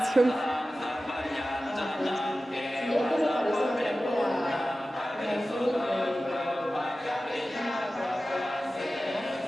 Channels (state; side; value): normal; both; correlation 0.95